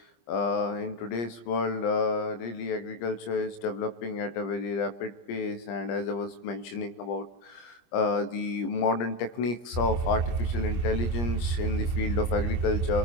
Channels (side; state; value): right; late; 25 ms